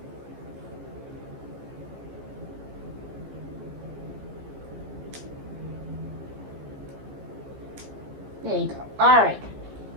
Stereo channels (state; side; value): late; left; 15 ms